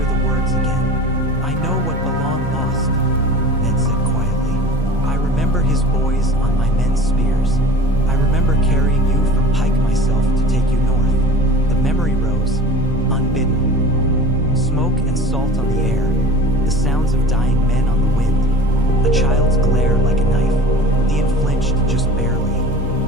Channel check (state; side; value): normal; both; correlation 0.39